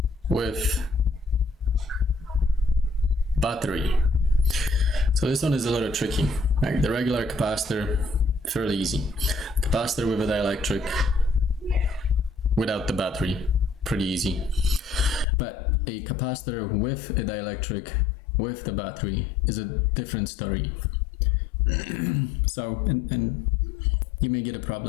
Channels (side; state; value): right; drops out; at 15.2 s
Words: with battery. So this one is a little tricky. Right? The regular capacitor, fairly easy. Capacitor with a dielectric without the battery, pretty easy. But a capacitor with a dielectric with the battery is a different story. So, and you may get a